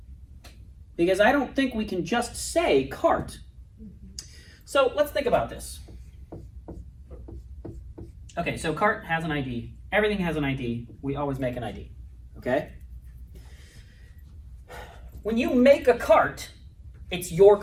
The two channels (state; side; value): identical; both; correlation 1.00